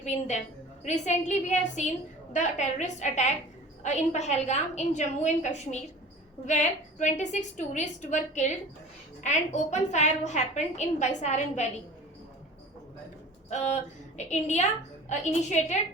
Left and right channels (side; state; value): both; normal; correlation 0.40